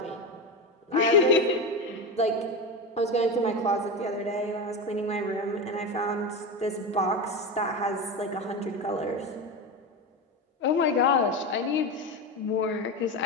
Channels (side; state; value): both; normal; correlation 0.19